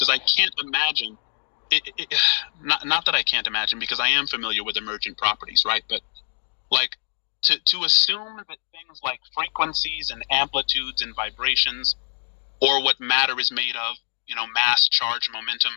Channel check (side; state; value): right; silent; digital silence